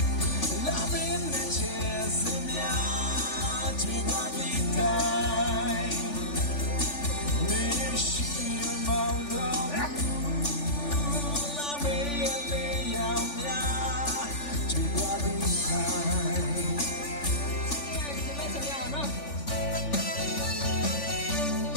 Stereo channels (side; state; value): right; late; 3.5 ms